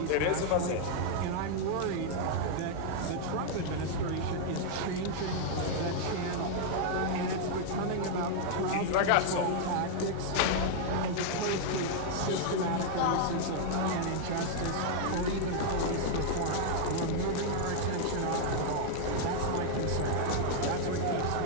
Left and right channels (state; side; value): different; both; correlation -0.01